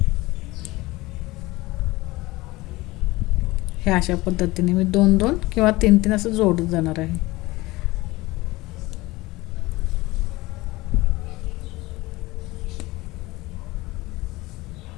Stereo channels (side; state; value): right; quieter; 20.2 dB